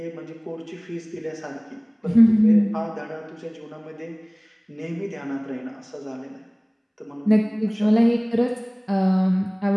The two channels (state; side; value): identical; both; correlation 1.00